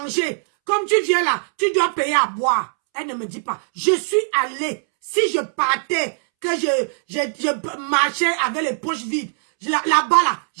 Comme tu viens là, tu dois payer à boire. Elle ne me dit pas. Je suis allée. Si je partais, que je marchais avec les poches vides, là-bas là,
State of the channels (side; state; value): left; silent; 65 dB below the other